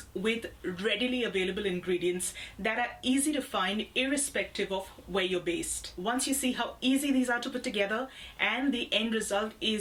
with readily available ingredients that are easy to find irrespective of where you're based. Once you see how easy these are to put together and the end result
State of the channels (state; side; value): identical; both; correlation 1.00